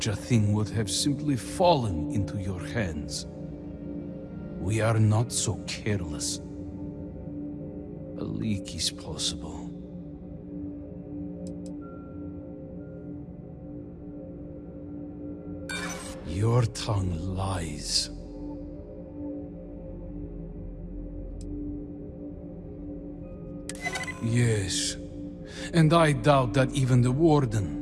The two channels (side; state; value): both; identical; correlation 1.00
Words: a thing would have simply fallen into your hands. We are not so careless. A leak is possible. Your tongue lies. Yes, and I doubt that even the